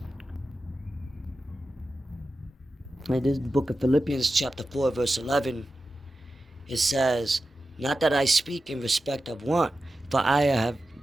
In this book of Philippians chapter 4 verse 11, it says, not that I speak in respect of want, for I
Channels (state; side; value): normal; both; correlation 0.92